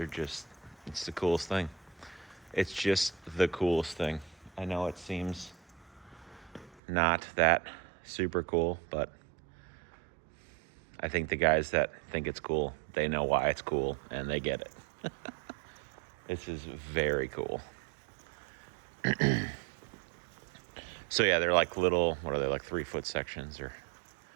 the coolest thing. It's just the coolest thing. I know it seems not that super cool, but I think the guys that think it's cool, they know why it's cool, and they get it. This is very cool. So yeah, they're like little, what are they, like 3-foot sections, or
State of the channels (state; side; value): drops out; left; at 6.8 s